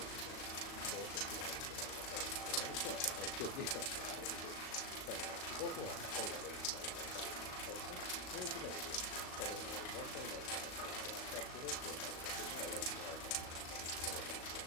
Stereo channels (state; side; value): late; right; 38 ms